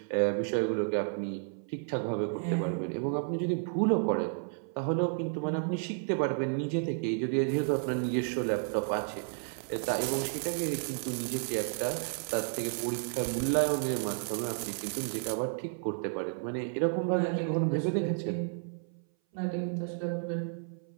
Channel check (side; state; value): left; silent; 56 dB below the other